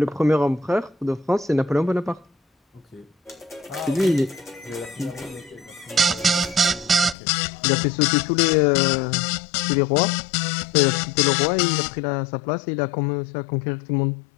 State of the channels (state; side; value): drops out; right; at 7.2 s